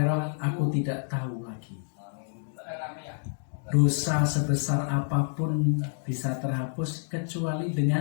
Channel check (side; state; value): right; silent; digital silence